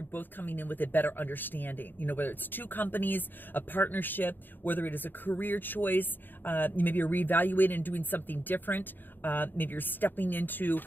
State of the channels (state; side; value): late; right; 0.092 ms